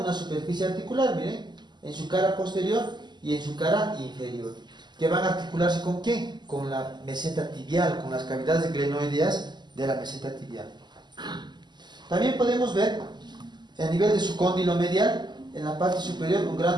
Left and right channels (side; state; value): left; late; 0.21 ms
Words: superficie articular, miren, en su cara posterior y en su cara inferior, que van a articularse ¿con qué? Con la meseta tibial, con las cavidades glenoideas de la meseta tibial. También podemos ver, a nivel de su cóndilo medial, en la parte superior un